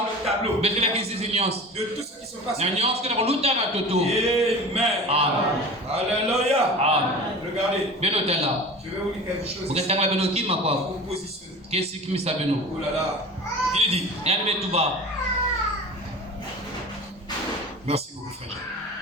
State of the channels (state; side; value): normal; both; correlation 0.36